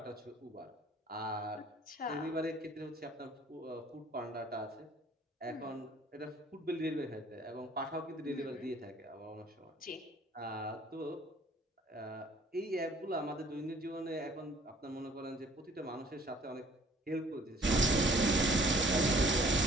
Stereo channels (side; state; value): both; normal; correlation 0.56